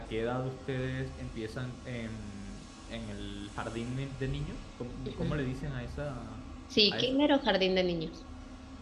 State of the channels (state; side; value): identical; both; correlation 1.00